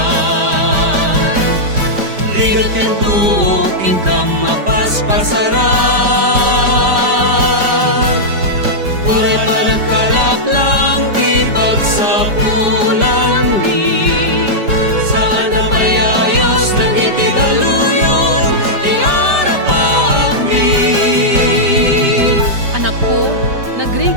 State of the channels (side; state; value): left; late; 5.0 ms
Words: Rigat ken tuok ingkam mapaspasaran. Puray panagkalap lang di pagsapulan ni. Saan na mayayos ng itigaluyon di arapaak mi. Anak ko,